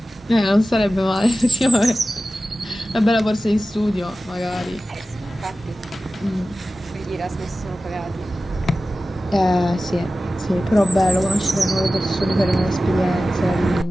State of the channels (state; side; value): normal; both; correlation 0.95